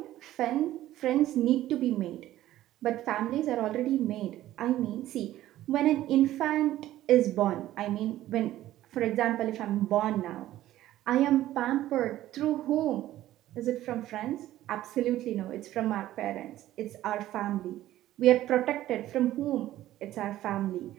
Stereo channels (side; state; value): left; quieter; 14.1 dB